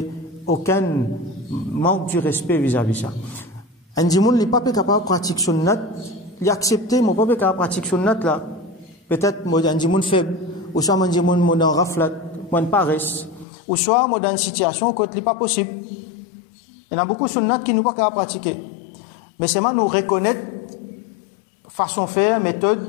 aucun manque du respect vis-à-vis ça. Un dimoun n'est pas capable de pratiquer sunnat, il a accepté, mais pas capable de pratiquer sunnat là. Peut-être un dimoun faible, ou soit un dimoun dans raflat, ou paresse, ou soit dans une situation où il n'est pas possible. Il y a beaucoup de sunnat qui ne sont pas capables de pratiquer. Mais c'est nous reconnaître façon de faire,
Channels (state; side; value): drops out; right; at 13.5 s